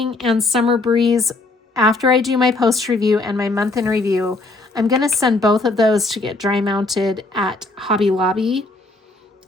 and Summer Breeze, after I do my post review and my month in review, I'm going to send both of those to get dry mounted at Hobby Lobby.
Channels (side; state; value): right; quieter; 3.2 dB